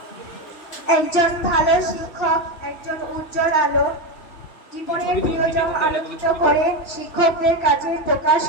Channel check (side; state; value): right; late; 2.8 ms